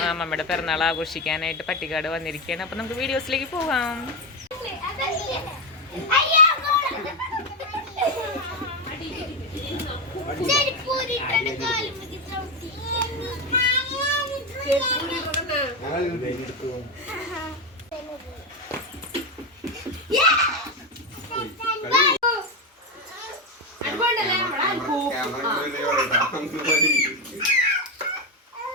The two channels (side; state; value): both; normal; correlation 0.10